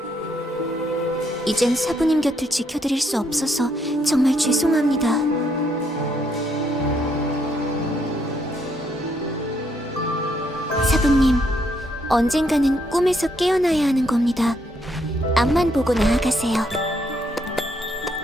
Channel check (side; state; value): both; normal; correlation 0.73